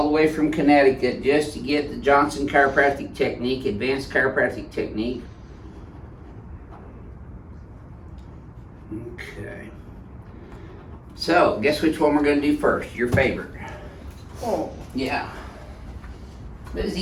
the way from Connecticut just to get the Johnson chiropractic technique, advanced chiropractic technique. Okay. So, guess which one we're going to do first? Your favorite. Oh. Yeah. It was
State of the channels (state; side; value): identical; both; correlation 1.00